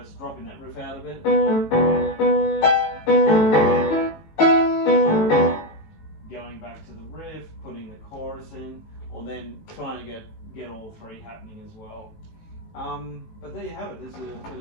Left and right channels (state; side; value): late; right; 18 ms